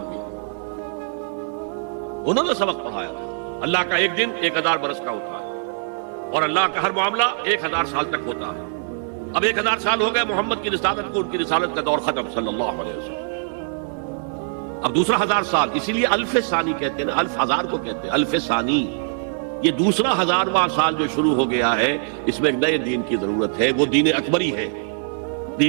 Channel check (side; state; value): left; silent; digital silence